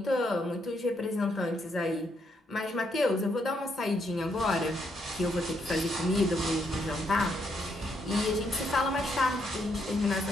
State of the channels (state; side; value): normal; both; correlation 0.76